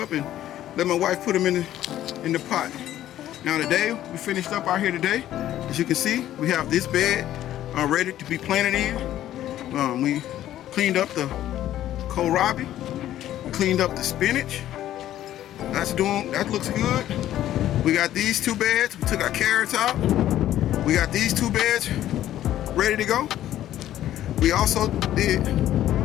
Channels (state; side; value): quieter; right; 12.7 dB